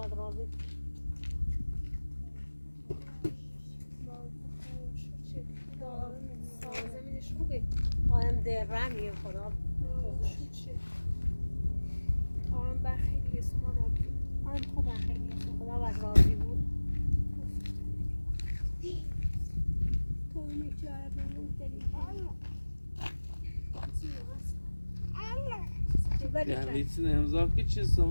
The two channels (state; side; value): inverted; both; correlation -1.00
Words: راضی زمینش خوبه آدم درمیه خدا آرام بر خیلی سمان آبی آدم خوبه خیلی خدا بد راضی بود تو میچاره بمون یه ویتین امضا که چی